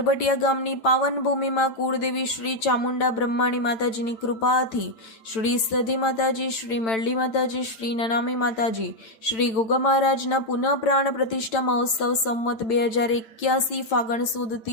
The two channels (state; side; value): late; right; 8.9 ms